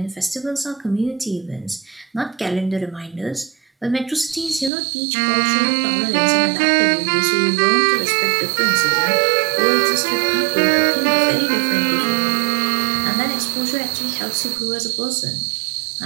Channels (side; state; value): left; drops out; at 4.7 s